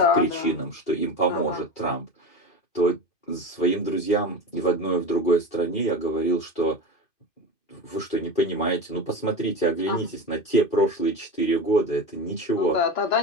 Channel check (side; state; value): right; late; 2.5 ms